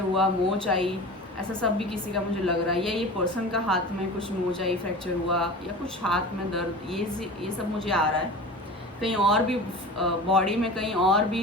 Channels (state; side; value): normal; both; correlation 0.34